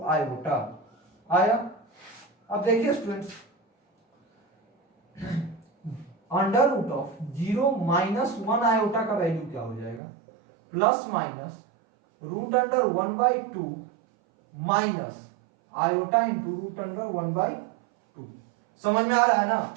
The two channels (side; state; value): left; drops out; at 10.0 s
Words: आयोटा आया। अब देखिए students, under root of 0 - 1 iota का वैल्यू क्या हो जाएगा, plus minus root under 1/2 minus iota into root under 1/2। समझ में आ रहा है ना?